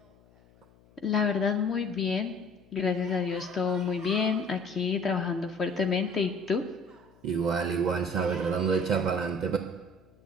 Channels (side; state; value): left; noise; hum, 29 dB below the sound